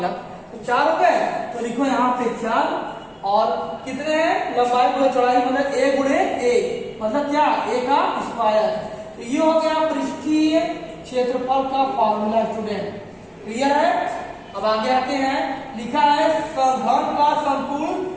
तो 4 हो गए, तो लिखो यहाँ पे 4। और कितने हैं, लंबाई गुणे चौड़ाई मतलब ए गुणे ए, मतलब क्या, ए का स्क्वायर। तो ये हो गया पृष्ठीय क्षेत्रफल का फॉर्मूला स्टूडेंट। क्लियर है। अब आगे आते हैं, लिखा है घन का संपूर्ण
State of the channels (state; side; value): identical; both; correlation 1.00